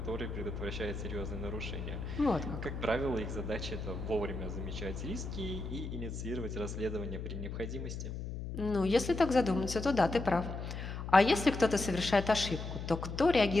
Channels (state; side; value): noise; left; hum, 6 dB below the sound